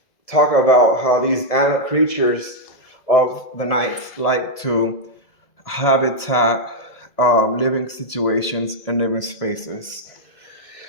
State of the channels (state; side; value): late; right; 2.0 ms